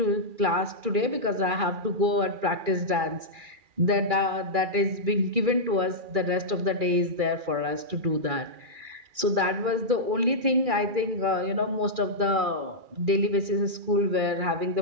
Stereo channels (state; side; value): late; left; 2.4 ms